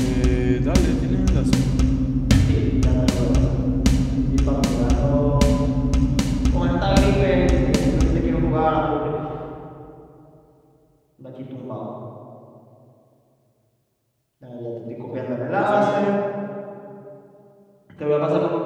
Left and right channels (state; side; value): identical; both; correlation 1.00